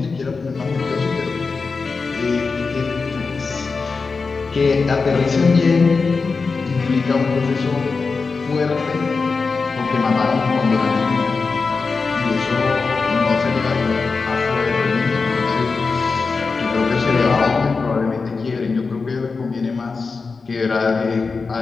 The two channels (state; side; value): quieter; right; 4.5 dB